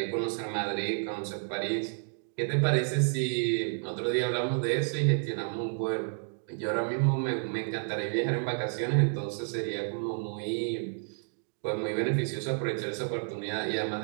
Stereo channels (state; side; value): silent; left; 57 dB below the other